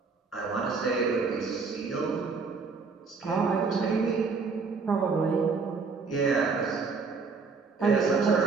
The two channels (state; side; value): quieter; left; 4.7 dB